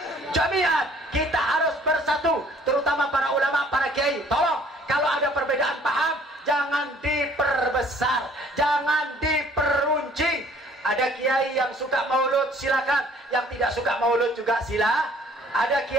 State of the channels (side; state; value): both; normal; correlation 0.57